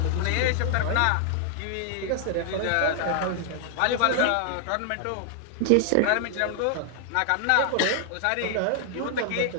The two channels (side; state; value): both; different; correlation 0.00